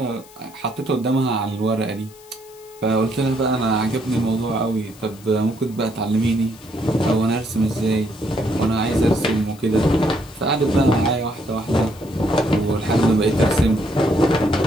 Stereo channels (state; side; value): noise; left; hiss, 24 dB below the sound